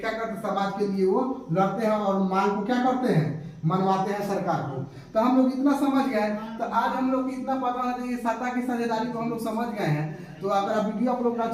करते हैं, समाज के लिए वो लड़ते हैं और मांग को क्या करते हैं, मनवाते हैं सरकार को। तो हम लोग इतना समझ गए, तो आज हम लोग इतना पता है कि सत्ता की साझेदारी को हम लोग समझ गए हैं। तो अगर वीडियो आप लोग को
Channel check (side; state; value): both; identical; correlation 1.00